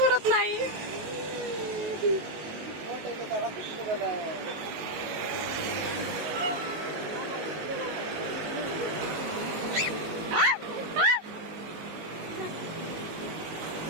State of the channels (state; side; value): late; left; 19 ms